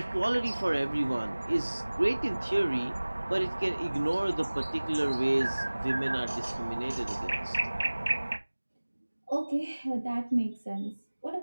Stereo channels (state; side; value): inverted; both; correlation -1.00